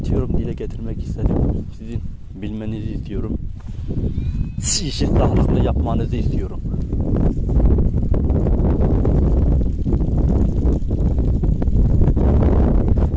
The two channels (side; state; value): both; identical; correlation 1.00